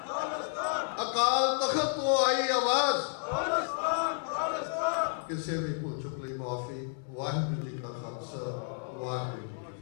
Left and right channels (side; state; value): right; silent; digital silence